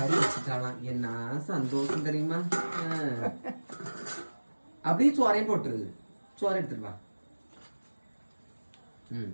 வச்சுட்டாலாம். என்ன சந்தோஷம் தெரியுமா? அப்படியே சோறையும் போட்டுருது. சோறை எடுத்துருவா.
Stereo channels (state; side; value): inverted; both; correlation -1.00